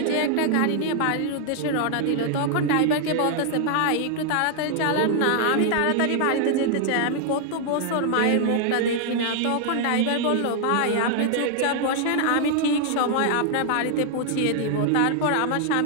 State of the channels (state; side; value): different; both; correlation 0.00